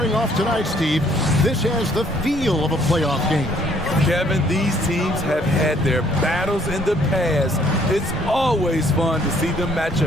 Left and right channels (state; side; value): normal; both; correlation 0.63